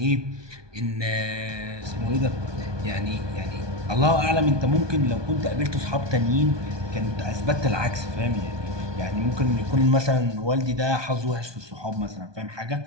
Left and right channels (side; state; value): left; late; 1.2 ms